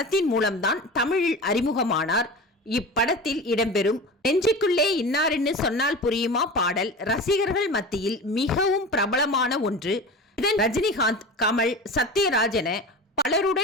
மூலம்தான் தமிழில் அறிமுகமானார். இப்படத்தில் இடம்பெறும் நெஞ்சுக்குள்ளே இன்னார்னு சொன்னால் புரியுமா பாடல் ரசிகர்கள் மத்தியில் மிகவும் பிரபலமான ஒன்று. இதன் ரஜினிகாந்த், கமல், சத்யராஜ் என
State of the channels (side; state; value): both; normal; correlation 0.31